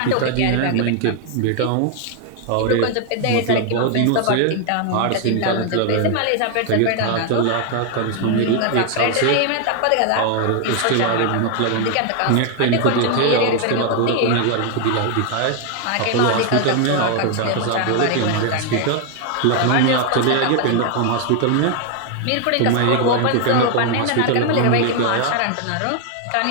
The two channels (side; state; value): both; different; correlation 0.00